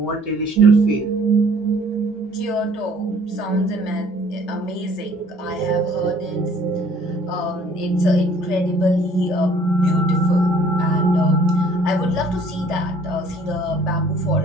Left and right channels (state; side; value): normal; both; correlation 0.57